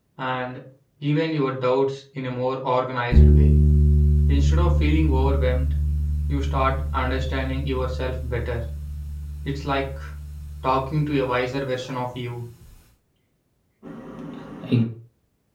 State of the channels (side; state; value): both; identical; correlation 1.00